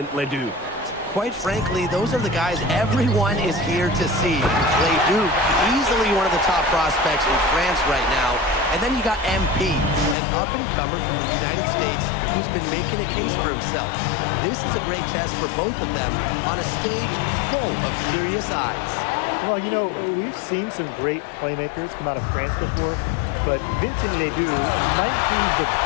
Ledoux. Quite frankly, those are the guys everyone is here to see. Ledoux, easily one of the top prospects in France right now. And then you got MP, an up-and-comer from the United States who's been making a case for himself. This is a great test for both of them on a stage full of curious eyes. Well, you know, we've seen some great playmakers come out of France before, but Vincent Ledoux might be the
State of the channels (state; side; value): drops out; right; at 10.2 s